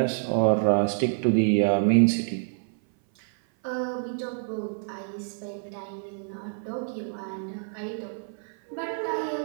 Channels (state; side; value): silent; left; 57 dB below the other